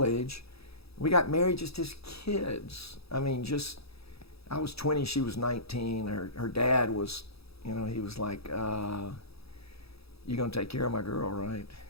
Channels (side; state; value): right; late; 0.77 ms